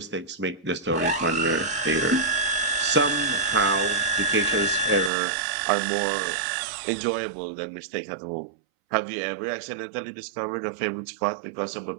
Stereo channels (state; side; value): drops out; left; at 5.1 s